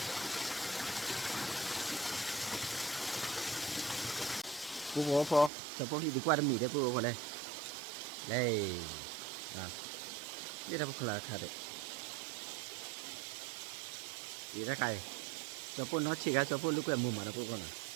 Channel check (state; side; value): drops out; left; at 5.5 s